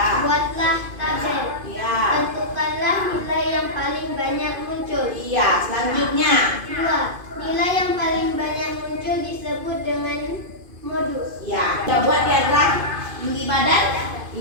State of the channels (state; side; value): late; left; 2.5 ms